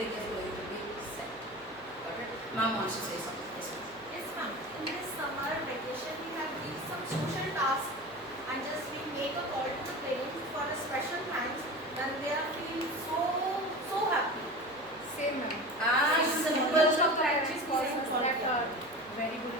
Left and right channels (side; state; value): right; noise; hum, 27 dB below the sound